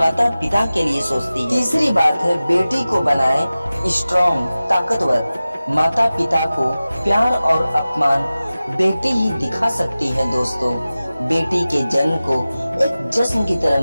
पिता के लिए सोचती है। तीसरी बात है, बेटी को बनाए स्ट्रॉन्ग, ताकतवर। माता पिता को प्यार और अपमान बेटी ही दिखा सकती है दोस्तों। बेटी के जन्म को एक जश्न की तरह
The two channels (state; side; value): inverted; both; correlation -0.96